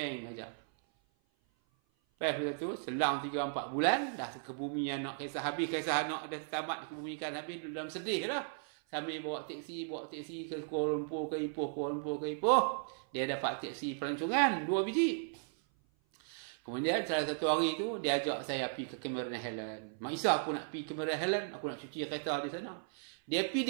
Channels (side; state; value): left; silent; 54 dB below the other